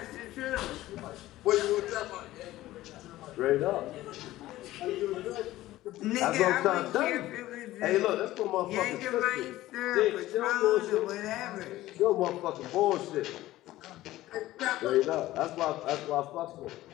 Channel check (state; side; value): quieter; right; 15.9 dB